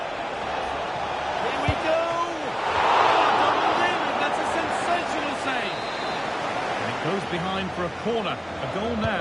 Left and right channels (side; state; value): both; identical; correlation 1.00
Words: Here we go! Goes behind for a corner. A goal